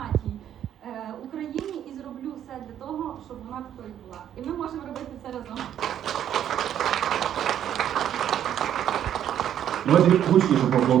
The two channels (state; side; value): quieter; left; 10.3 dB